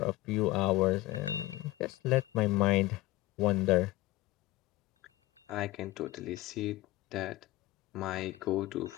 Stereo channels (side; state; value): right; quieter; 18.1 dB